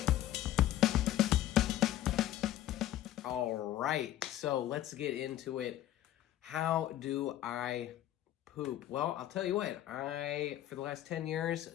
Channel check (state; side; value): quieter; right; 13.2 dB